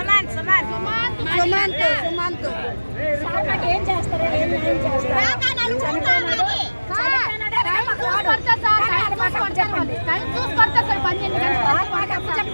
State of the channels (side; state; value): both; inverted; correlation -1.00